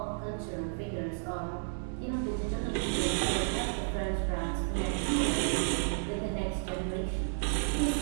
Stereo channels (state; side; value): silent; left; digital silence